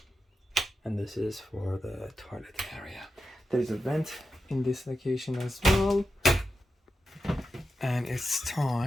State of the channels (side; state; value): both; normal; correlation 0.90